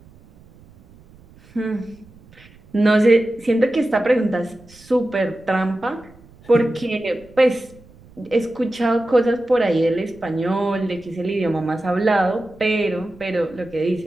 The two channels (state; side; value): noise; right; rumble, 25 dB below the sound